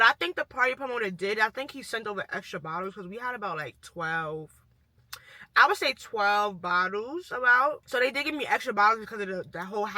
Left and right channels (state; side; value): identical; both; correlation 1.00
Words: I think the party promoter did, I think he sent over extra bottles, because we had about like 12. I would say 12 bottles about. So they did give me extra bottles because of the whole